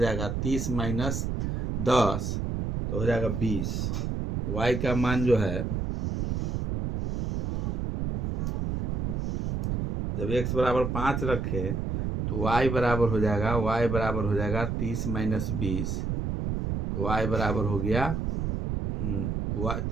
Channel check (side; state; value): right; noise; rumble, 1 dB below the sound